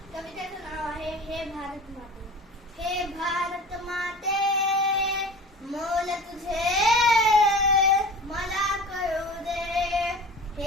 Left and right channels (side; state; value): both; normal; correlation 0.37